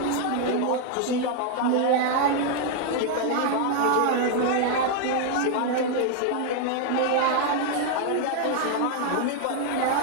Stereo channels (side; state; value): both; different; correlation 0.00